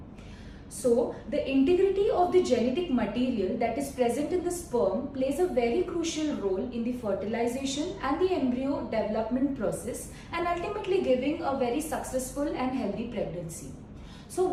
So the integrity of the genetic material that is present in the sperm plays a very crucial role in the fertilization and the embryo development process, and ultimately giving a very successful and healthy pregnancy. So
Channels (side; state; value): both; identical; correlation 1.00